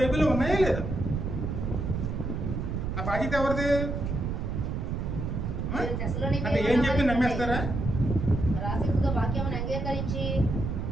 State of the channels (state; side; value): noise; right; rumble, 2 dB below the sound